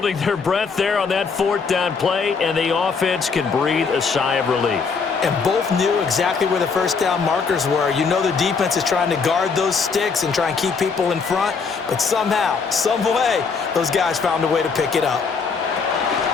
their breath there on that 4th down play, and the offense can breathe a sigh of relief. And both knew exactly where the first down markers were. You know the defense is trying to guard those sticks and try and keep people in front, but somehow, some way, those guys found a way to pick it up.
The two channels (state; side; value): quieter; right; 5.2 dB